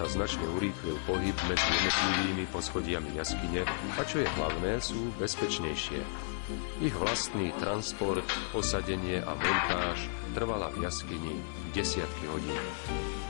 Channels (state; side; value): silent; right; 56 dB below the other